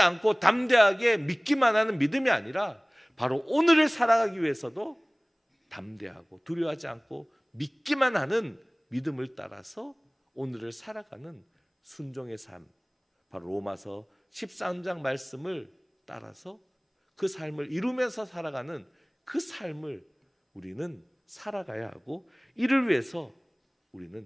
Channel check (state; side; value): identical; both; correlation 1.00